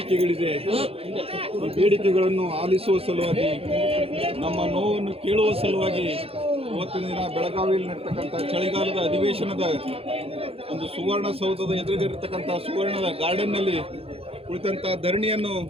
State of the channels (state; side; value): late; left; 0.28 ms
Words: ಈ ಬೇಡಿಕೆಗಳನ್ನು ಆಲಿಸುವ ಸಲುವಾಗಿ ನಮ್ಮ ನೋವನ್ನು ಕೇಳುವ ಸಲುವಾಗಿ ಇವತ್ತಿನ ದಿನ ಬೆಳಗಾವಿಯಲ್ಲಿ ನಡೀತಕ್ಕಂಥ ಚಳಿಗಾಲದ ಅಧಿವೇಶನದ ಒಂದು ಸುವರ್ಣಸೌಧದ ಎದುರಿಗಿರತಕ್ಕಂಥ ಸುವರ್ಣದ ಗಾರ್ಡನ್ನಲ್ಲಿ ಕುಳಿತಂಥ ಧರಣಿಯನ್ನು